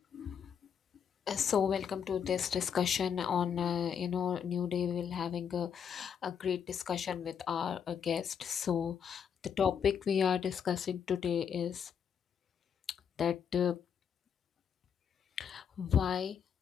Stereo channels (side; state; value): right; quieter; 7.6 dB